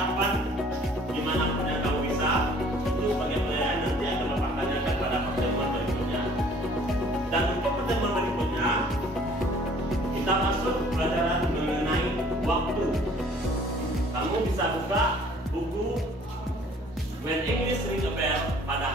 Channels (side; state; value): both; normal; correlation 0.55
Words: dimanapun yang kamu bisa. Itu sebagai penilaian nanti akan Bapak tanyakan pada pertemuan berikutnya. Dan untuk pertemuan berikutnya kita masuk pelajaran mengenai waktu. Kamu bisa buka buku When English Ring a Bell pada